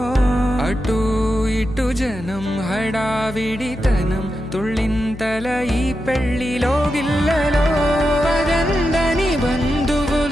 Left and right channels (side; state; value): left; noise; hum, 14 dB below the sound